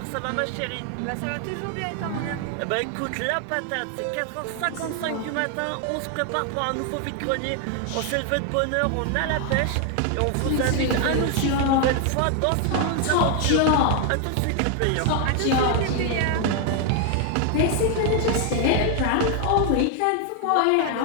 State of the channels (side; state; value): both; different; correlation 0.00